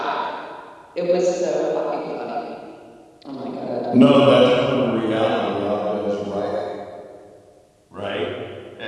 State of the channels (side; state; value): both; identical; correlation 1.00